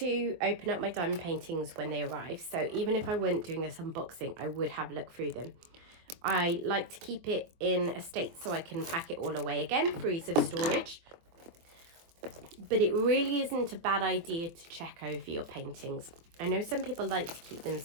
open up my diamond paintings when they arrive. So even if I weren't doing this unboxing, I would have a look through them. I like to keep it in a state so I can pack it all away again for ease of storage. But it really isn't a bad idea to check over your paintings. I know some people like to keep them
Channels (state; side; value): late; left; 23 ms